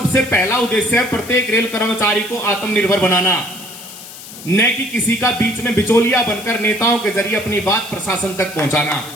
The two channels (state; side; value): noise; left; hiss, 15 dB below the sound